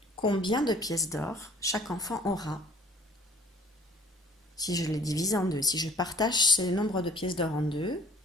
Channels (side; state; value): both; normal; correlation 0.53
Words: combien de pièces d'or chaque enfant aura. Si je les divise en deux, si je partage ce nombre de pièces d'or en deux,